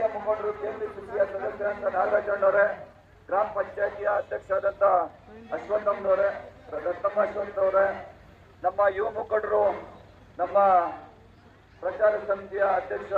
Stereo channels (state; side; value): identical; both; correlation 1.00